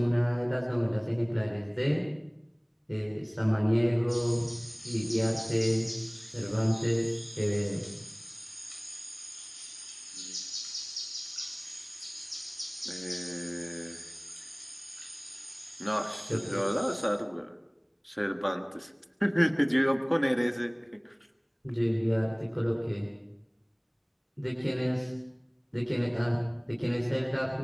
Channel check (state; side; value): identical; both; correlation 1.00